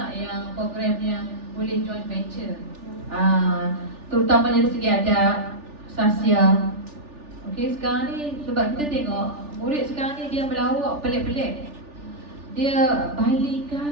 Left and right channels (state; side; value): late; left; 3.4 ms